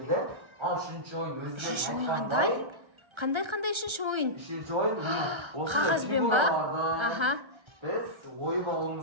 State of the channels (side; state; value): left; late; 1.3 ms